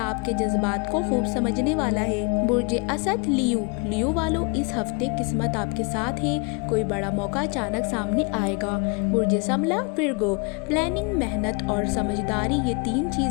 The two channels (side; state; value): right; quieter; 31.5 dB